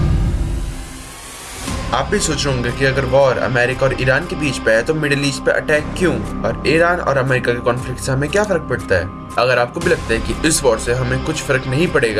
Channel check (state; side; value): identical; both; correlation 1.00